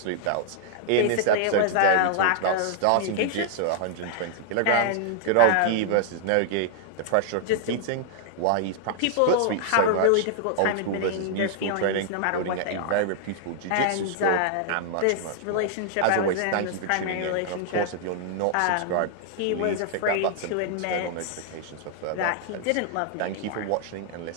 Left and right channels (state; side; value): different; both; correlation 0.00